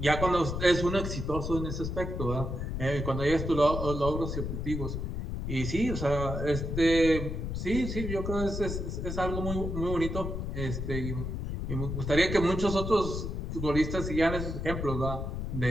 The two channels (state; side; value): noise; left; rumble, 4 dB below the sound